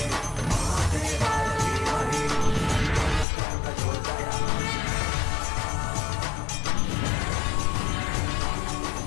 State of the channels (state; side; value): drops out; right; at 3.2 s